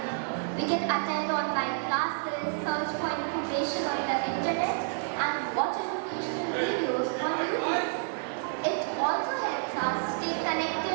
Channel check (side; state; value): left; silent; digital silence